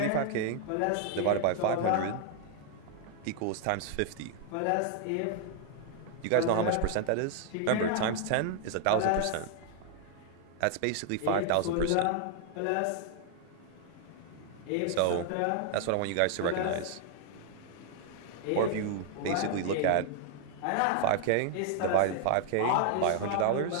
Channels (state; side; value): different; both; correlation 0.00